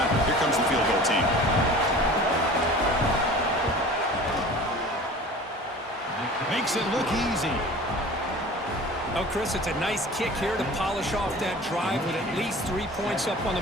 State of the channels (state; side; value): normal; both; correlation 0.41